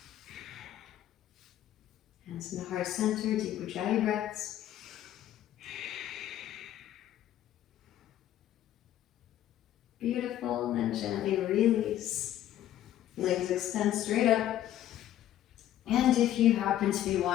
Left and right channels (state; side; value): quieter; right; 12.3 dB